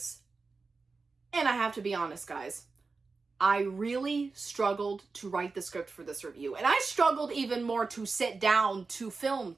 and I have to be honest, guys. I really struggled to write the script for this review, and I struggled even more to sit down to film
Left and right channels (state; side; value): quieter; left; 4.2 dB